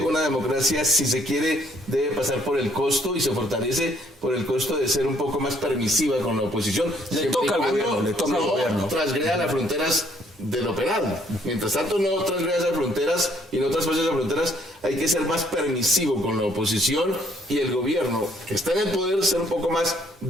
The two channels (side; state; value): both; normal; correlation 0.65